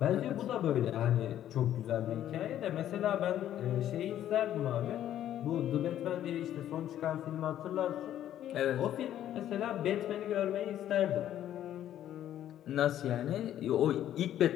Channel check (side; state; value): right; quieter; 11.6 dB